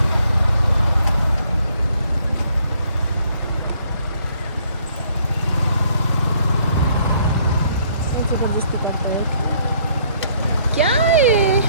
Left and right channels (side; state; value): both; inverted; correlation -0.66